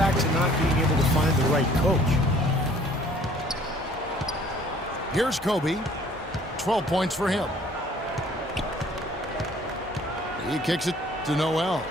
to not being able to find the right coach. Here's Kobe. 12 points for him. He kicks it to Noel.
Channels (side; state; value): both; normal; correlation 0.55